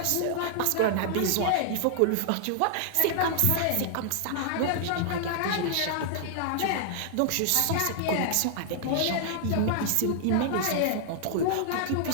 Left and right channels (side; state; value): both; different; correlation -0.01